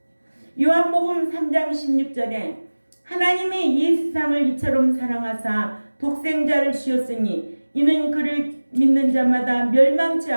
요한복음 3장 16절에 하나님이 이 세상을 이처럼 사랑하사 독생자를 주셨으니 이는 그를 믿는 자마다 멸망치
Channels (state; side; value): inverted; both; correlation -1.00